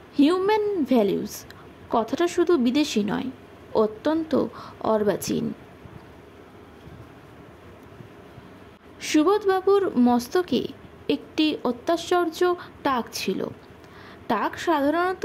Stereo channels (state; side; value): identical; both; correlation 1.00